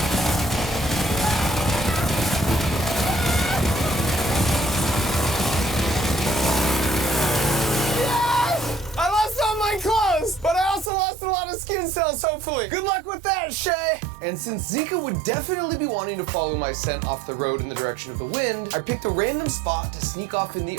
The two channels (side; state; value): left; drops out; at 10.9 s